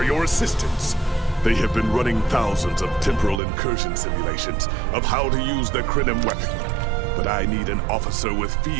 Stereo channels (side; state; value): left; drops out; at 3.4 s